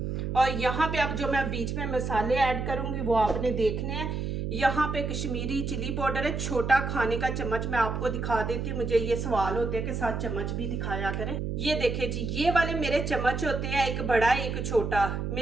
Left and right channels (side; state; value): right; noise; hum, 3 dB below the sound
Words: और यहाँ पे अब जो मैं बीच में मसाले ऐड करूँगी वो आपने देखने हैं। यहाँ पे कश्मीरी चिली पाउडर है, छोटा खाने का चम्मच। मैं आपको दिखा देती हूँ, मुझे ये सवाल होते हैं कि साथ चम्मच भी दिखाया करें। ये देखे जी, ये वाले मेरे चम्मच होते हैं, एक बड़ा एक छोटा।